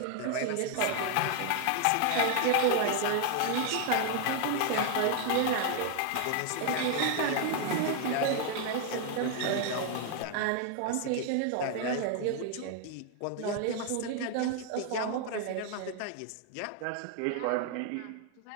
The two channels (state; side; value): different; both; correlation 0.00